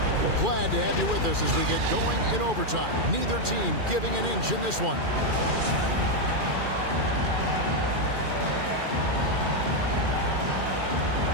Glad to have you with us as we get going in overtime. Neither team giving an inch in this one.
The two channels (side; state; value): left; late; 2.4 ms